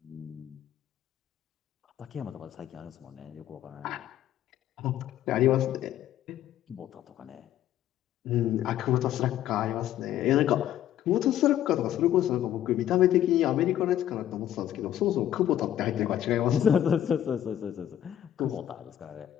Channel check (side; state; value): right; quieter; 11.6 dB